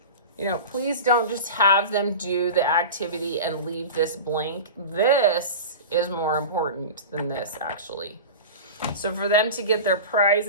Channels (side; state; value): both; inverted; correlation -0.30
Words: Please don't just have them do the activity and leave this blank. This is more important than this, actually. So for them to get their prize